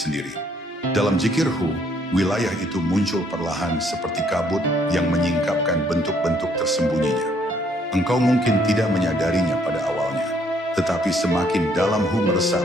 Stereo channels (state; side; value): normal; both; correlation 0.66